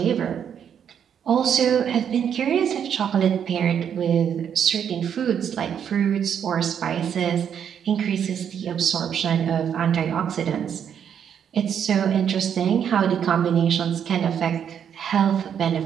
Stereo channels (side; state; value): left; quieter; 8.4 dB